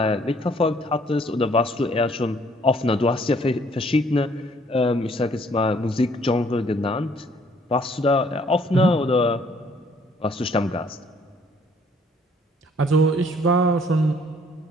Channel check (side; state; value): both; normal; correlation 0.62